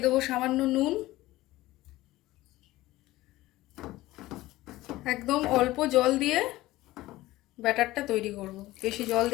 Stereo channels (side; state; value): right; quieter; 17.4 dB